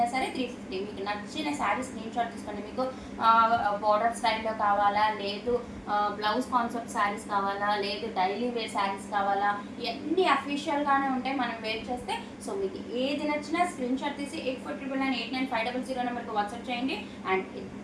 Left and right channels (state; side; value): identical; both; correlation 1.00